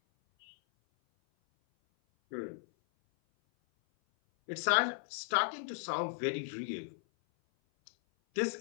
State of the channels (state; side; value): silent; right; 54 dB below the other